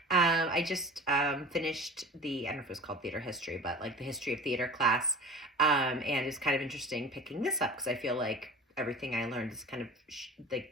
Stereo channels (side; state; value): both; normal; correlation 0.38